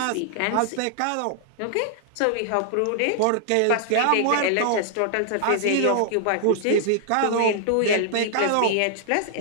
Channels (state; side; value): different; both; correlation -0.01